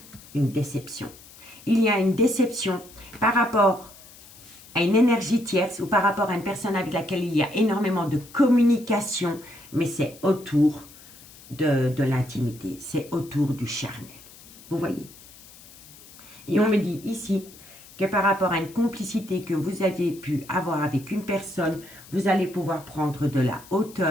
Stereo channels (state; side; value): noise; left; hiss, 21 dB below the sound